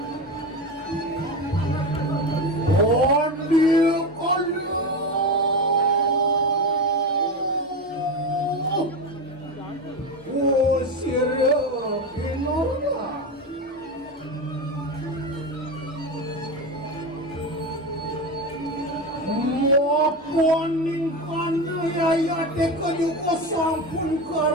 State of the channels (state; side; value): normal; both; correlation 0.20